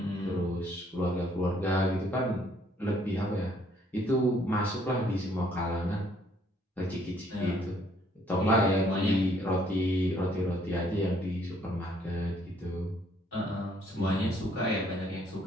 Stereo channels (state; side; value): normal; both; correlation 0.64